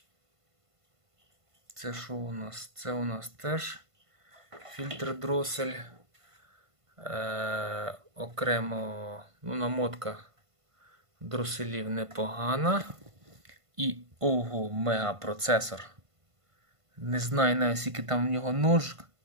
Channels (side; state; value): left; late; 1.5 ms